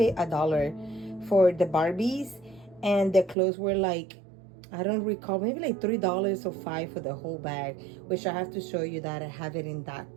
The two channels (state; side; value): drops out; left; at 3.4 s